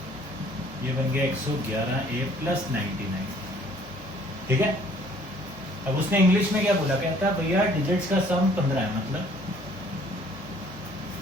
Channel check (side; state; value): both; normal; correlation 0.58